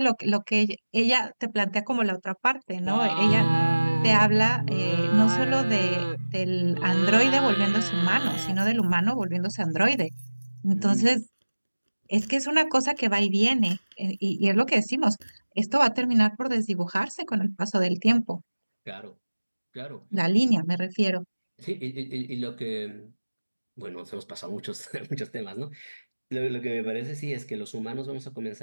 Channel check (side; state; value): both; inverted; correlation -1.00